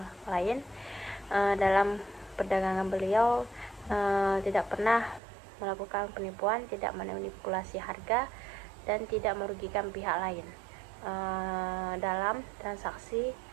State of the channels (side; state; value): left; drops out; at 5.2 s